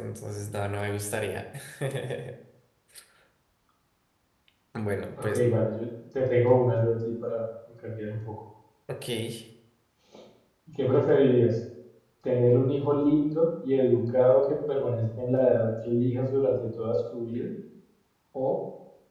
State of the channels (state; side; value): identical; both; correlation 1.00